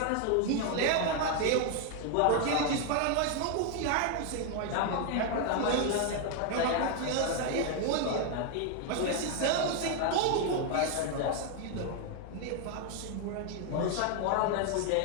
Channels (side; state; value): both; different; correlation 0.01